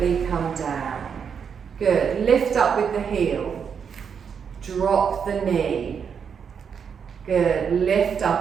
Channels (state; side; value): quieter; left; 6.9 dB